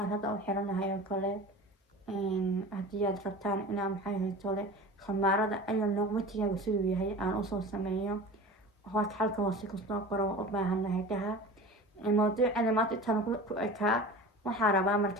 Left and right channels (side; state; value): both; normal; correlation 0.36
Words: hadda u xiranahay oo kale haddii aad rabtaan inaa maxay haytole khamaarada ayaa noqmatiyaga siduu yahay aan usoo sameeyo hoos halka hoose kusoo qoro waan u baahanahay dhaha mawduucani maanta intana ku ekaa waxaa rabaa